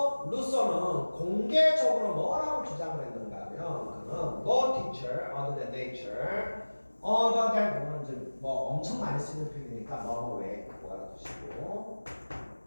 루소는 공개적으로 뭐라고 주장을 했는가 하면 그는 no teacher other than nature other than 뭐는 이제 뭐 엄청 많이 쓰는 표현이니까 뭐 왜 그거 알아두시고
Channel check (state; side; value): inverted; both; correlation -1.00